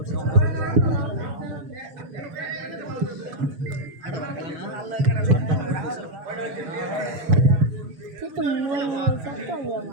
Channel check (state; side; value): late; left; 6.8 ms